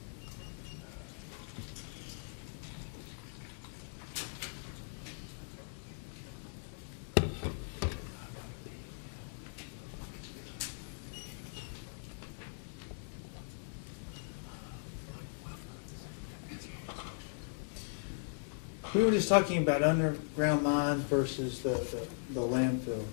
We were just talking about underground mines versus the landfill.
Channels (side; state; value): right; silent; digital silence